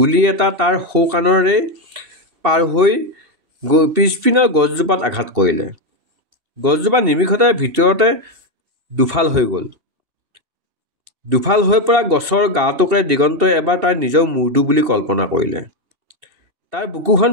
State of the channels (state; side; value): late; left; 2.7 ms